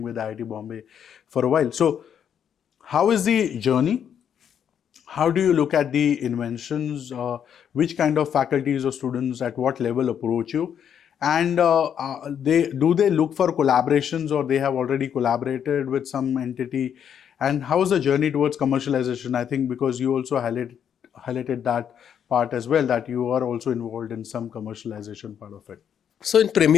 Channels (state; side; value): quieter; right; 8.6 dB